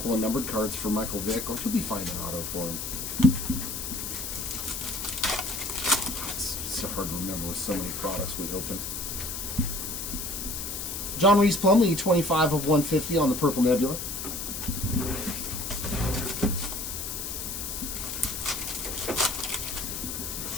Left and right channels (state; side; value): noise; left; hiss, 5 dB below the sound